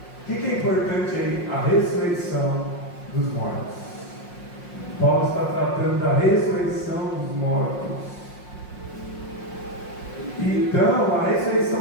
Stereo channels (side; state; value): right; late; 5.6 ms